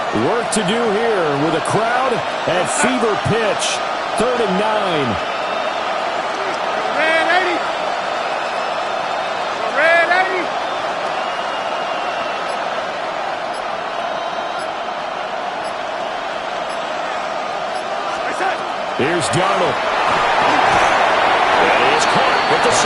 Work to do here with a crowd at fever pitch. 3rd and 9. Here's Darnold. That is caught at the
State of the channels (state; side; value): identical; both; correlation 1.00